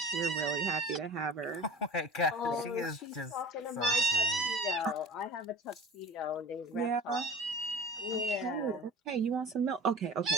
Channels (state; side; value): normal; both; correlation 0.39